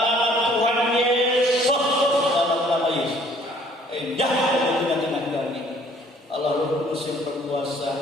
nama Tuhan Yesus. Dalam nama Yesus. Jangan di tengah-tengah kami. Allah Roh Kudus yang berkuasa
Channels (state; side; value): normal; both; correlation 0.58